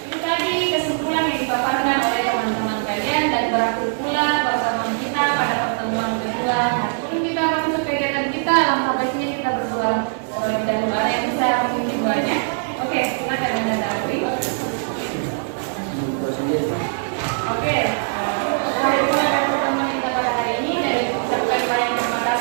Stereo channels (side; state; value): left; silent; digital silence